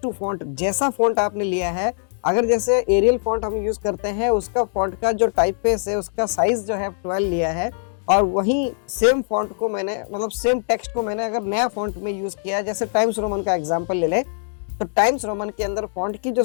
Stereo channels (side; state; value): right; silent; digital silence